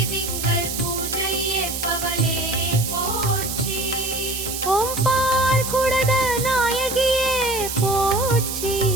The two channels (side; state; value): right; noise; hiss, 5 dB below the sound